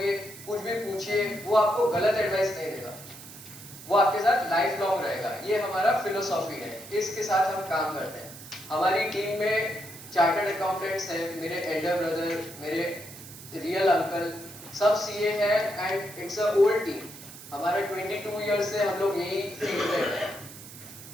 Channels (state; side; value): noise; right; hiss, 15 dB below the sound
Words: कुछ भी पूछिए, वो आपको गलत एडवाइस नहीं देगा, वो आपके साथ लाइफ लॉन्ग रहेगा. ये हमारा फिलोसॉफी है, इसके साथ हम काम करते हैं. हमारी टीम में चार्टर्ड अकाउंटेंट्स हैं, मेरे एल्डर ब्रदर, मेरे रियल अंकल, सब CA है and it's a old team. हमारा 22 ईयर्स से हम लोग यही फील्ड में हैं,